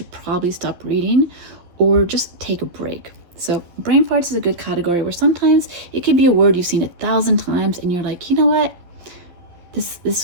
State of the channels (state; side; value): late; left; 11 ms